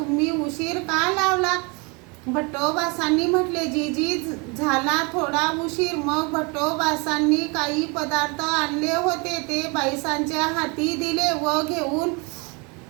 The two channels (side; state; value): left; quieter; 30.4 dB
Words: उशीर का लावला? भट्टोबासांनी म्हटले, जी झाला थोडा उशीर। मग भट्टोबासांनी काही पदार्थ आणले होते, ते बाईसांच्या हाती दिले व घेऊन